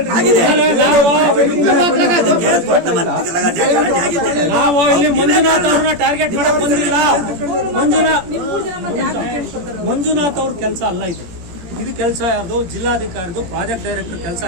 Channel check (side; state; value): left; late; 17 ms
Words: ನಾವು ಇಲ್ಲಿ ಮಂಜುನಾಥ್ ಅವ್ರನ್ನ ಟಾರ್ಗೆಟ್ ಮಾಡಕ್ ಬಂದಿಲ್ಲ. ಮಂಜುನಾಥ್ ಅವ್ರ ಕೆಲಸ ಅಲ್ಲ ಇದು ಕೆಲಸ ಯಾರ್ದು? ಜಿಲ್ಲಾಧಿಕಾರಿದು, ಪ್ರಾಜೆಕ್ಟ್ ಡೈರೆಕ್ಟರ್ ಕೆಲಸ.